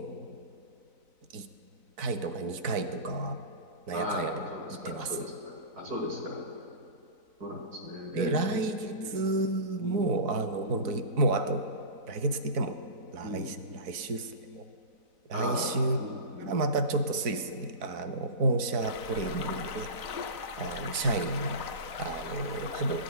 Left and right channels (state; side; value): late; left; 4.0 ms